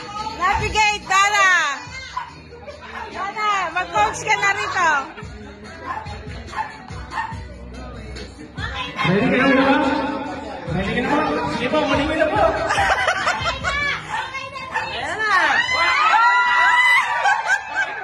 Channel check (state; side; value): identical; both; correlation 1.00